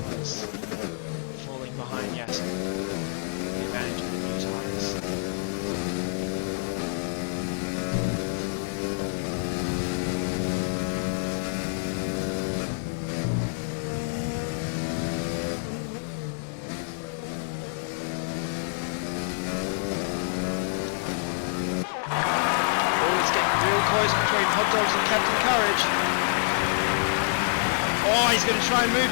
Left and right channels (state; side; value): silent; right; 60 dB below the other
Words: is falling behind Yasin. The advantage of the new tyres. Real close between Hot Dogs and Captain Courage. Oh, he's going to try and move